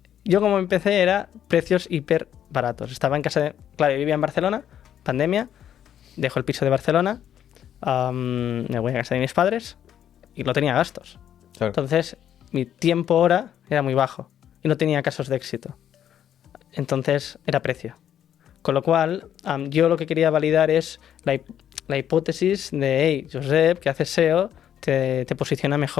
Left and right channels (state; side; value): quieter; right; 10.1 dB